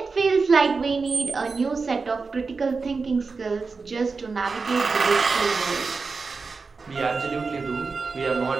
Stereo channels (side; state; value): left; quieter; 4.5 dB